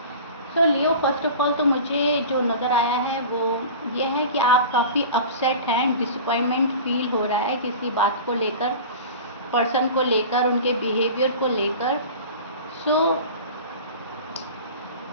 so Leo, first of all तो मुझे जो नज़र आया है वो ये है कि आप काफ़ी अपसेट हैं, डिसअपॉइंटमेंट फील हो रहा है किसी बात को लेकर, पर्सन को लेकर, उनके बिहेवियर को लेकर। सो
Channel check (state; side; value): inverted; both; correlation -0.36